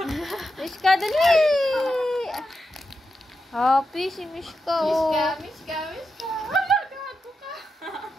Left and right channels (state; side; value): normal; both; correlation 0.87